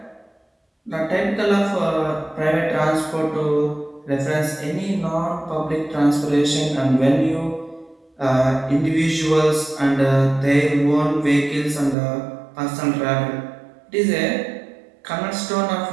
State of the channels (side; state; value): left; drops out; at 12.0 s